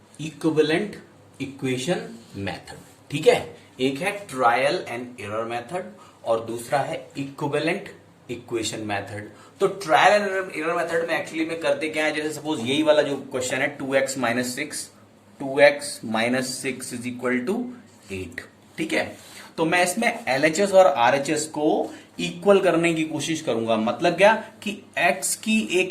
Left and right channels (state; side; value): identical; both; correlation 1.00